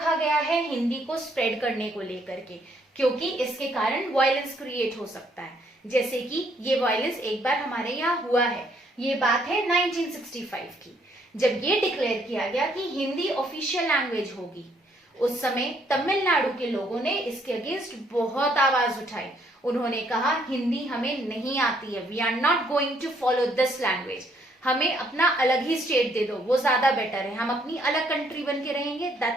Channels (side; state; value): both; normal; correlation 0.68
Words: गया है हिंदी को स्प्रेड करने को लेकर के, क्योंकि इसके कारण वायलेंस क्रिएट हो सकता है. जैसे कि ये वायलेंस एक बार हमारे यहाँ हुआ है. ये बात है 1965 की, जब ये डिक्लेयर किया गया कि हिंदी ऑफिशियल लैंग्वेज होगी. उस समय तमिलनाडु के लोगों ने इसके अगेंस्ट बहुत आवाज उठाई. उन्होंने कहा हिंदी हमें नहीं आती है, we are not going to follow this language. हमें अपना अलग ही स्टेट दे दो, वो ज्यादा बेटर है. हम अपनी अलग कंट्री बन के रहेंगे,